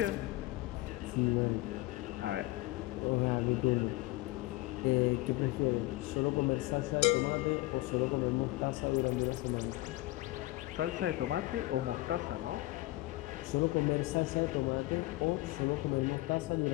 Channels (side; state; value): right; quieter; 19.2 dB